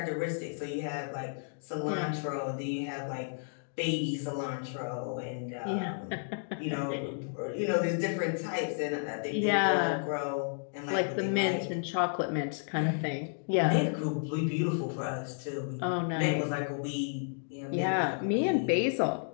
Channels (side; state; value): right; silent; digital silence